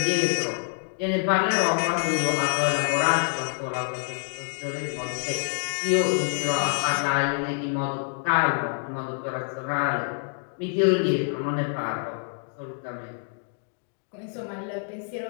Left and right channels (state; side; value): silent; right; digital silence